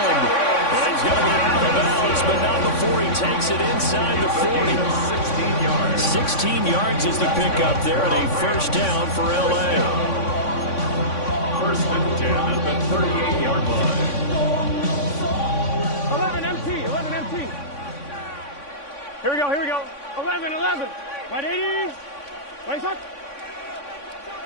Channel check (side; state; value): right; late; 3.5 ms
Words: Well, he's going to be out of bounds, but not before he takes it inside the 40. 16 yards. 16 yards is the pickup there, and a first down for L.A. 1st and 10 at the 38-yard line. 11 empty. Here we go. 11. Right 80. Right shot.